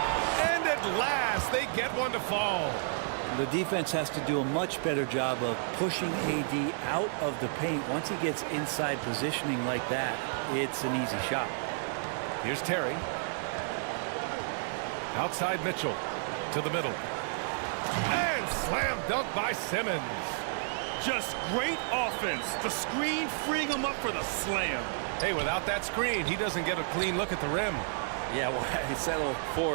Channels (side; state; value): left; silent; digital silence